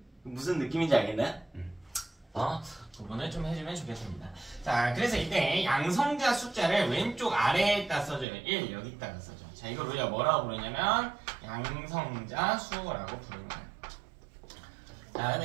무슨 느낌인지 알겠나요? 구분을 좀 해주면 좋겠습니다. 자, 그래서 이때 양성자 숫자를 왼쪽 아래에다 써줘요. 1 여기다가 써줘. 자, 이걸 우리가 뭐라고 부르냐면 양성자 수라고 부르는 거예요. 자,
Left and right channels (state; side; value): drops out; left; at 8.2 s